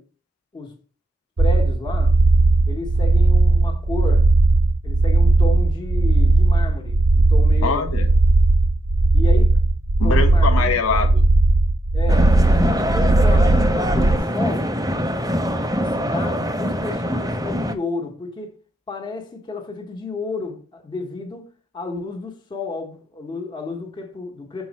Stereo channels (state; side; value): normal; both; correlation 0.85